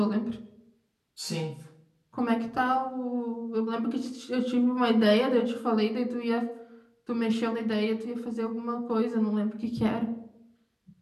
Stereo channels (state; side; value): identical; both; correlation 1.00